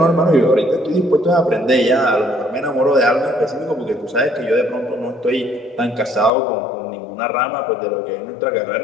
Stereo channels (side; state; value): right; drops out; at 6.3 s